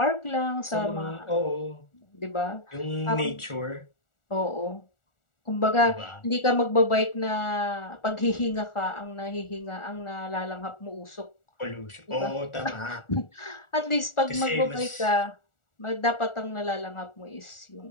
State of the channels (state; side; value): late; right; 1.4 ms